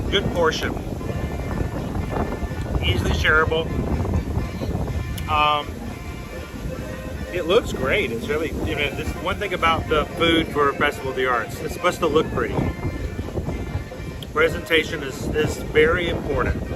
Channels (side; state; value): both; identical; correlation 1.00